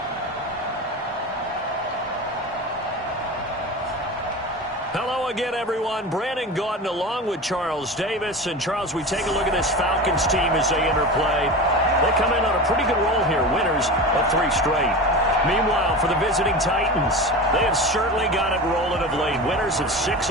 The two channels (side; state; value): both; normal; correlation 0.28